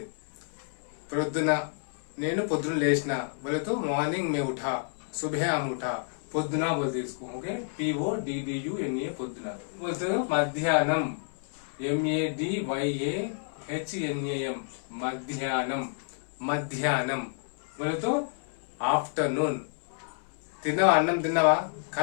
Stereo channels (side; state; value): right; silent; 58 dB below the other